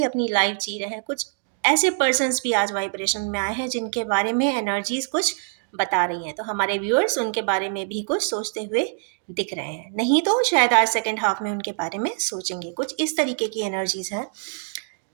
अपनी लाइफ जी रहे हैं। कुछ ऐसे पर्सन्स भी आज वाइब्रेशन में आए हैं जिनके बारे में एनर्जीज कुछ बता रही हैं। तो हमारे व्यूअर्स उनके बारे में भी कुछ सोचते हुए दिख रहे हैं। नहीं तो शायद आज सेकेंड हाफ में उनके बारे में सोचेंगे। कुछ इस तरीके की एनर्जीज हैं।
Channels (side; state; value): left; silent; 59 dB below the other